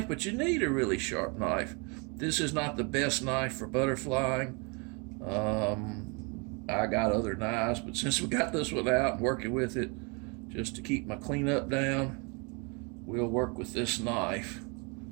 but you need a really sharp knife. This is not the best knife for butterflying. I got other knives, but since we got this one out and working with it just to keep my cleanup down, we'll work with this knife.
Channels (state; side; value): quieter; left; 32.2 dB